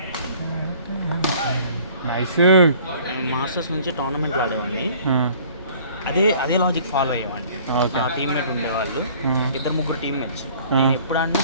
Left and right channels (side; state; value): both; inverted; correlation -0.52